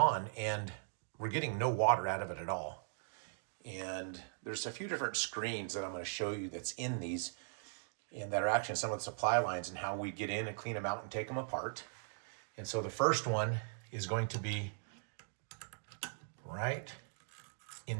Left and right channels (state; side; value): silent; left; digital silence